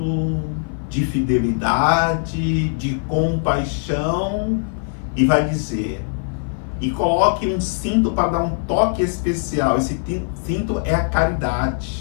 de fidelidade, de compaixão, e vai dizer: e coloque um cinto para dar um toque especial. Esse cinto é a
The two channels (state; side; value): silent; right; 55 dB below the other